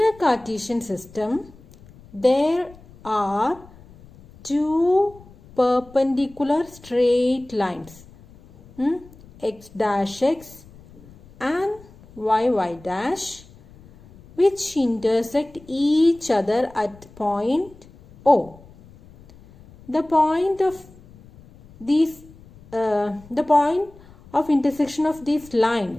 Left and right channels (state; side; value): noise; left; rumble, 23 dB below the sound